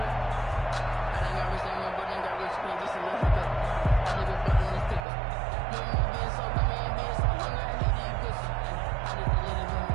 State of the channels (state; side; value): drops out; left; at 5.1 s